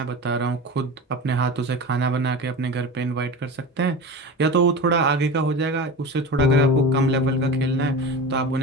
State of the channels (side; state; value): both; normal; correlation 0.30